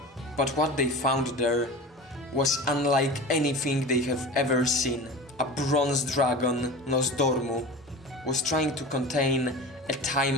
but what they found there was unlike anything they have ever seen. A bronze dragon, Nosdormu, was trying to contain a time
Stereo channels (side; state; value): both; normal; correlation 0.33